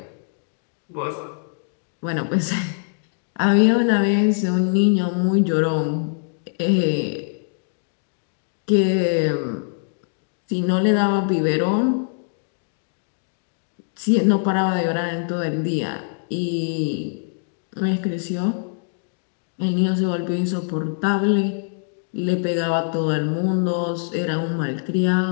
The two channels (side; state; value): right; silent; digital silence